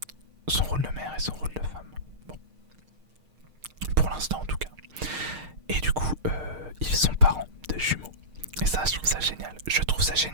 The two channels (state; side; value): late; left; 6.5 ms